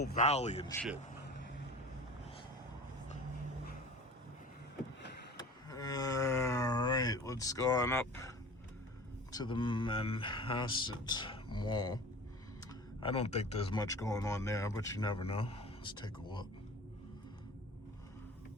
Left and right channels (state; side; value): normal; both; correlation 0.40